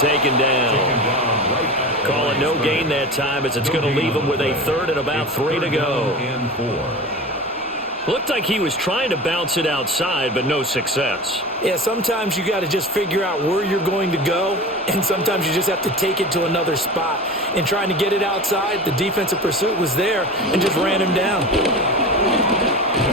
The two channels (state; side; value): normal; both; correlation 0.31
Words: down. Call it no gain that time as it's going to leave him with a 3rd and about 3 to go. Looked like he was trying to bounce it outside, but no success. Yeah, sometimes you got to just figure out where you're going to go, and sometimes you just have to take it to another spot. In trying to get it outside, the defensive pursuit was there and just ran him down. And